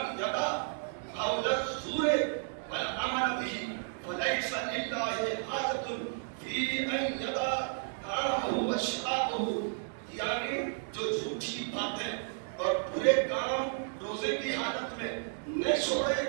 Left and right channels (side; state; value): left; silent; 55 dB below the other